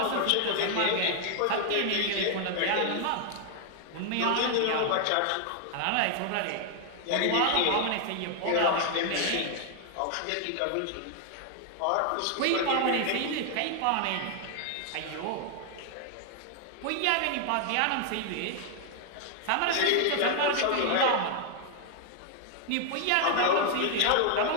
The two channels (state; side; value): different; both; correlation 0.00